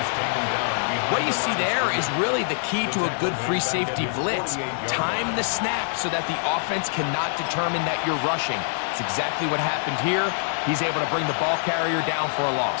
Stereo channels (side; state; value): right; silent; digital silence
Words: taken down behind What you see there is really the key to a good free safety blitz. Time the snap so that the offense cannot determine that you're rushing. It's exactly what happened here. He's able to bring the ball carrier down for a